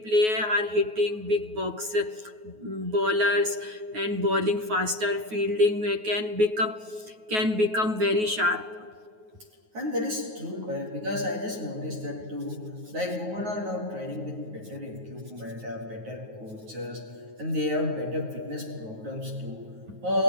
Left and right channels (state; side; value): late; left; 9.4 ms